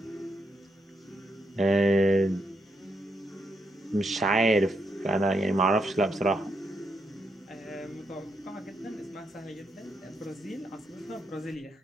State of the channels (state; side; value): normal; both; correlation 0.79